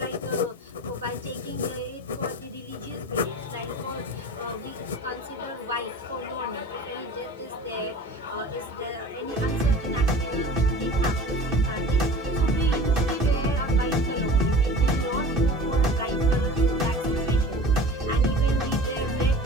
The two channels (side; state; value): both; normal; correlation 0.40